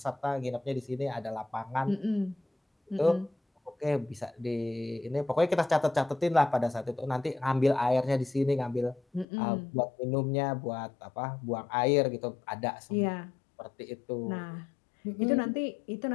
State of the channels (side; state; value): right; drops out; at 9.2 s